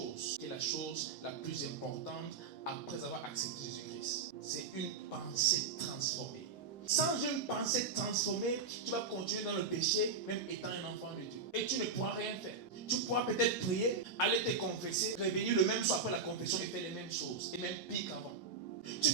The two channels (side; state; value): left; quieter; 4.7 dB